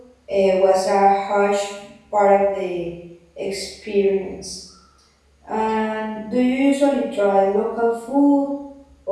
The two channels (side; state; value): both; identical; correlation 1.00